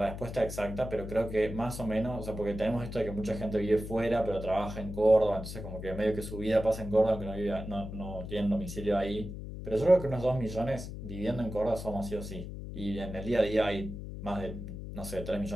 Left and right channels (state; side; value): noise; left; hum, 8 dB below the sound